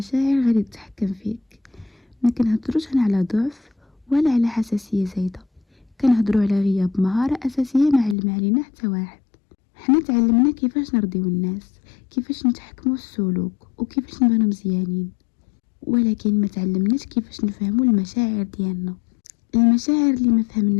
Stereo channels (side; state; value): right; drops out; at 8.2 s